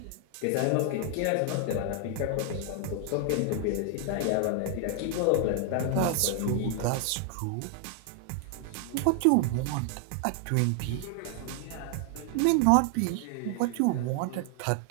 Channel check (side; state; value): both; different; correlation 0.00